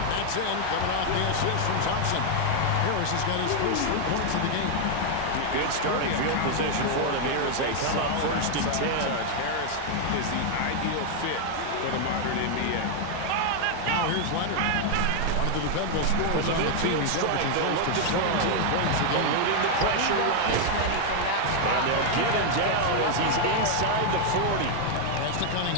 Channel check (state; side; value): different; both; correlation 0.00